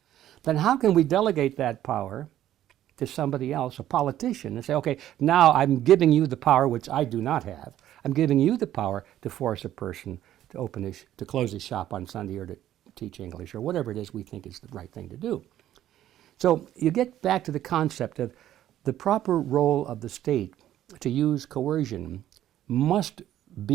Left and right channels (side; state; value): left; quieter; 12.3 dB